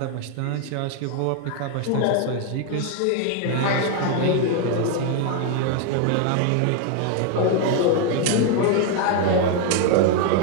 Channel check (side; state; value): both; different; correlation 0.00